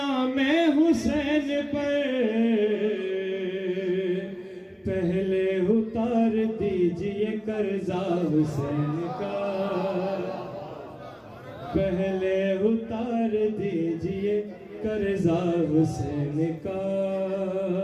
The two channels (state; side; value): identical; both; correlation 1.00